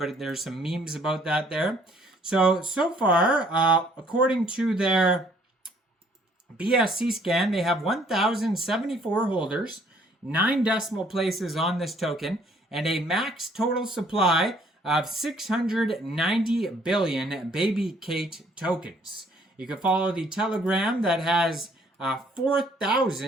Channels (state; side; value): normal; both; correlation 0.62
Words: there's some memes about that there. So far, according to their BSC scan, they have 1,074 holders, 9 decimal places on this token, and a max total supply of 690 billion Babycate tokens. You can follow the Telegram that has